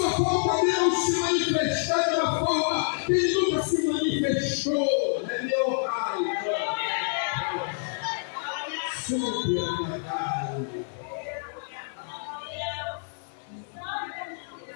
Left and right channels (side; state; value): right; silent; digital silence